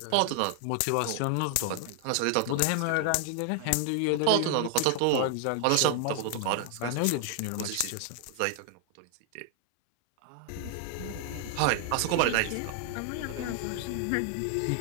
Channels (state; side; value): different; both; correlation 0.00